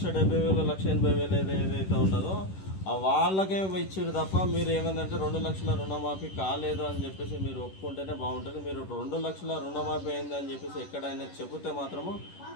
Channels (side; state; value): right; late; 10 ms